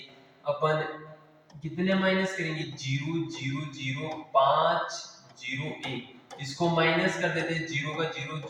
अपन कितने माइनस करेंगे, 0 0 0 5 0 1, इसको माइनस कर देते हैं, 0 का 0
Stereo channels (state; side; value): identical; both; correlation 1.00